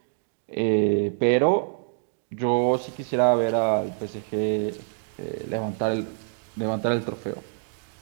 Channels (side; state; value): left; silent; 61 dB below the other